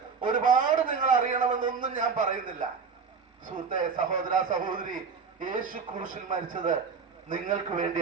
ഒരുപാട് നിങ്ങൾ അറിയണമെന്നൊന്നും ഞാൻ പറയുന്നില്ല. സുഹൃത്തെ, സഹോദര, സഹോദരി, യേശു ക്രൂശിൽ മരിച്ചത് നിങ്ങൾക്ക്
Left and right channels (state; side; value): quieter; left; 5.6 dB